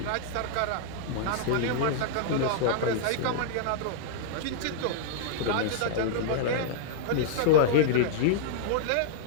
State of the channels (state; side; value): different; both; correlation -0.02